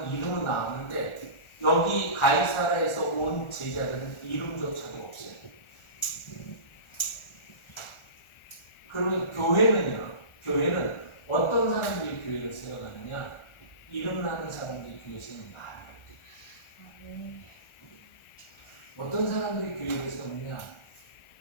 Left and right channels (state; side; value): late; right; 1.4 ms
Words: 이름은 나왔는데 여기 가이사라에서 온 제자들은 이름조차도 없어요. 그러면 교회는 어떤 사람들이 교회를 세워가느냐? 이름 나는 사람들이 교회 세우는 말이에요. 어떤 사람들이 교회를 세우느냐?